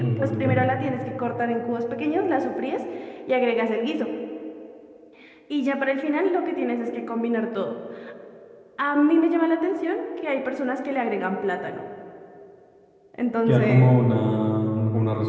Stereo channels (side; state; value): both; identical; correlation 1.00